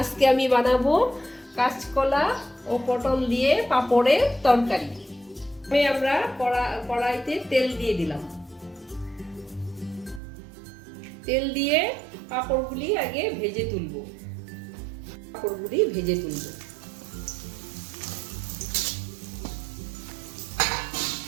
আমি বানাবো কাঁচকলা ও পটল দিয়ে পাঁপড়ের তরকারি। আমরা কড়াইতে তেল দিয়ে দিলাম। তেল দিয়ে পাঁপড়গুলি আগে ভেজে তুলব।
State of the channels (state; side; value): drops out; left; at 10.2 s